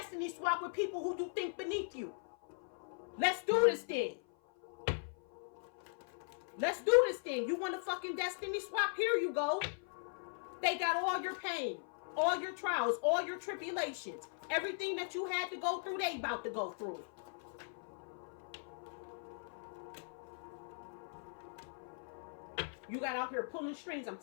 swap with people who do think beneath you. Let's do this then. Let's do this then. You want to fucking destiny swap? Here you go. They got all your pain, all your trials, all your tribulations. Everything that you had to go through, they about to go through it. You got out here pulling strings. I'm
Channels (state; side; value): silent; right; 52 dB below the other